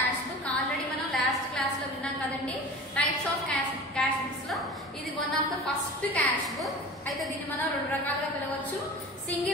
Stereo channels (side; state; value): both; normal; correlation 0.36